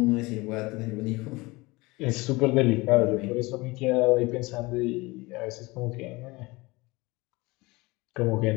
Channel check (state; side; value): quieter; right; 23.2 dB